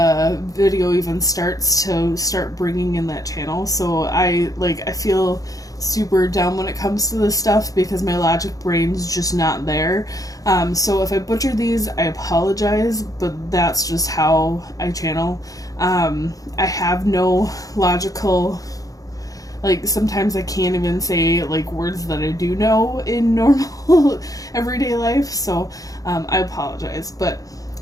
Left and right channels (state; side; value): late; right; 0.17 ms